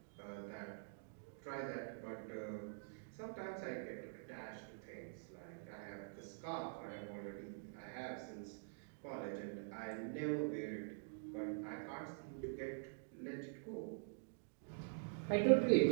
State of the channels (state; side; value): silent; left; digital silence